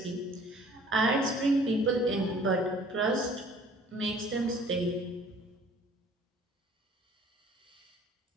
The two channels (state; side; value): normal; both; correlation 0.53